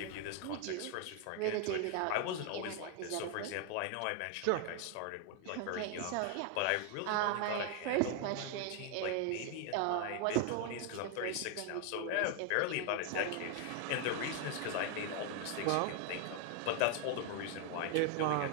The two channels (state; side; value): different; both; correlation 0.01